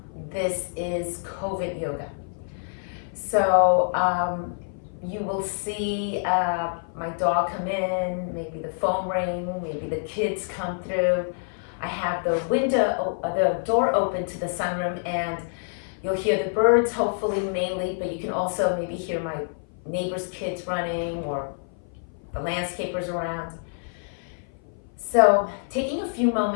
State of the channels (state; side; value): silent; right; 56 dB below the other